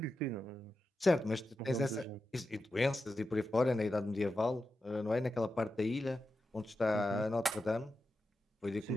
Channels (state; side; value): normal; both; correlation 0.90